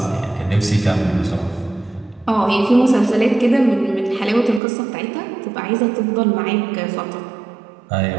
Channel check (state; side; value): drops out; left; at 4.6 s